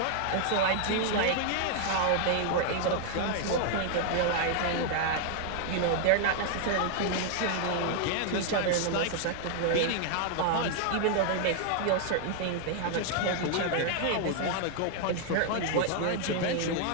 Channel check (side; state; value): both; different; correlation 0.00